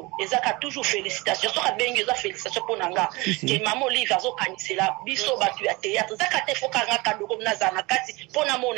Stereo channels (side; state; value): left; quieter; 23.8 dB